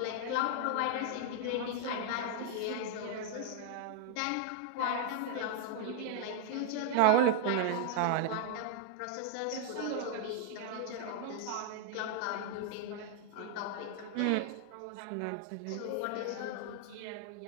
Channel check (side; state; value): both; different; correlation 0.00